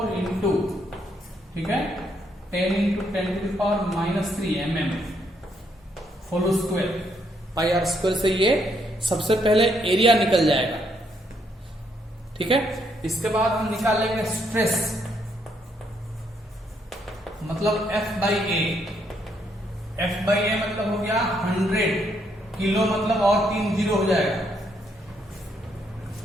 इंटू, ठीक है, 10 into 10⁻³ mm whole square. Pi r square से ये सबसे पहले एरिया निकल जाएगा, ठीक है। इसके बाद हम निकालेंगे स्ट्रेस, मतलब F/A। F/A मतलब हो गया 100 किलो, मतलब और 3 जीरो हो जाएगा,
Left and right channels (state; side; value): normal; both; correlation 0.73